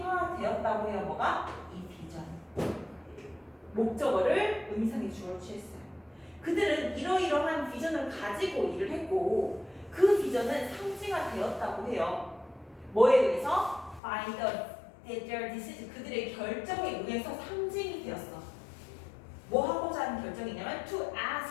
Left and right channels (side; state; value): right; drops out; at 14.0 s